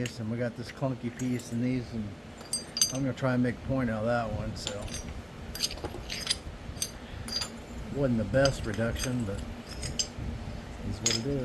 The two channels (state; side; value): identical; both; correlation 1.00